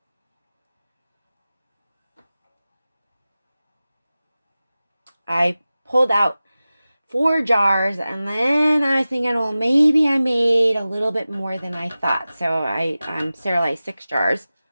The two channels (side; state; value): both; inverted; correlation -0.96